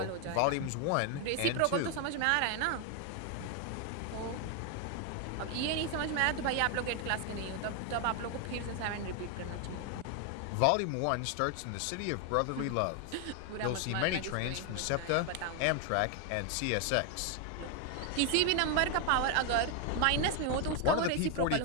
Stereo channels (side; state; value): both; different; correlation 0.01